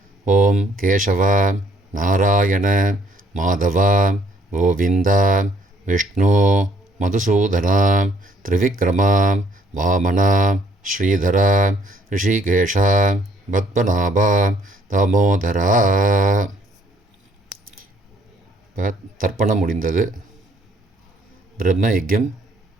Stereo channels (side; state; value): both; normal; correlation 0.64